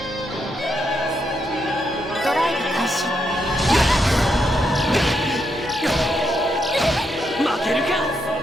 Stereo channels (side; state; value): both; normal; correlation 0.80